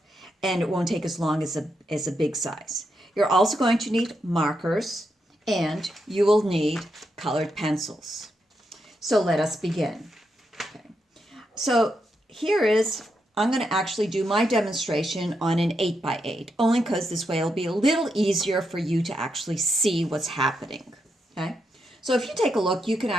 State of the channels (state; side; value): normal; both; correlation 0.83